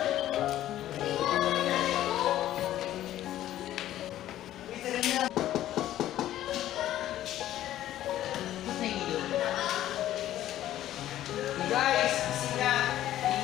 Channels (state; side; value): quieter; right; 13.1 dB